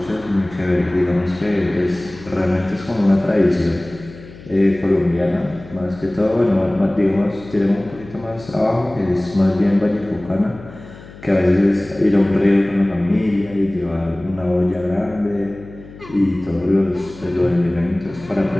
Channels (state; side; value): noise; left; hum, 18 dB below the sound